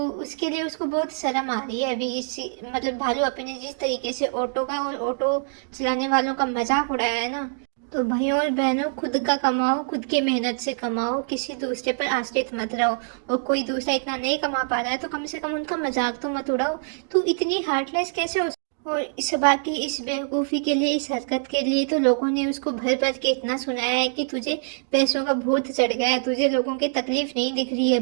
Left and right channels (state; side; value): silent; left; digital silence